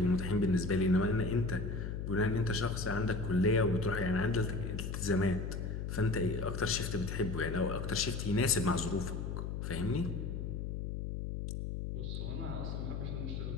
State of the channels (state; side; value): noise; left; hum, 4 dB below the sound